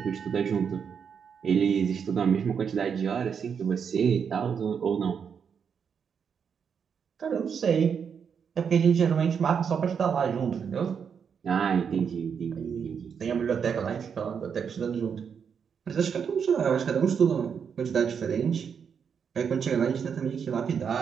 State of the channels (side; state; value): left; quieter; 6.9 dB